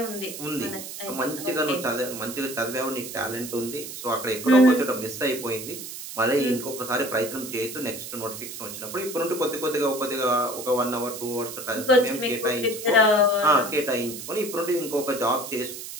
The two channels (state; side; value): noise; right; hiss, 10 dB below the sound